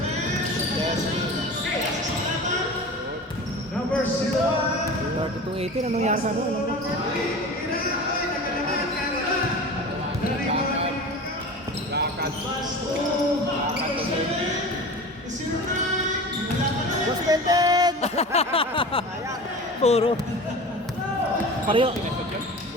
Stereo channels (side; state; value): both; normal; correlation 0.34